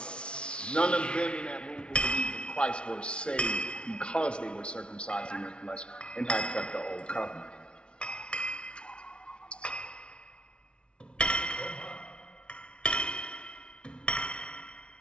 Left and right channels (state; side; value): late; right; 0.057 ms